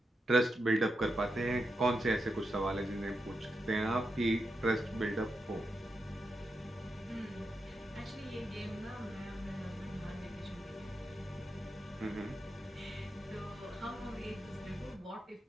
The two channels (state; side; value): normal; both; correlation 0.86